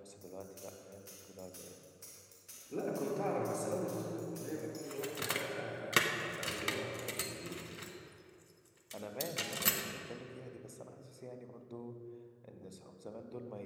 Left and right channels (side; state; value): both; identical; correlation 1.00